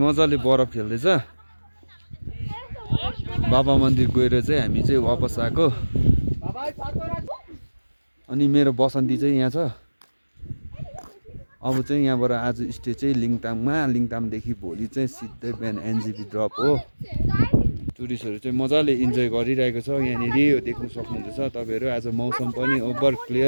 बरफ खेल्दैछ। बाबा मन्दिर गएर चाहिँ हामी चाहिँ वापस आएको। अनि मेरो बसन्ती चाहिँ यहाँ छ। अब चाहिँ यहाँबाट आज स्टे चाहिँ लिङतामदेखि भोलि चाहिँ सिधै बिहान एनजेपी ड्रप हो। टुरिस्टहरू चाहिँ मजाले इन्जोय गरिरहेको छ यहाँनिर, यो देख्न सक्नुहुँदैछ तपाईँहरू। आज मौसम पनि ओभर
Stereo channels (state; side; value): inverted; both; correlation -1.00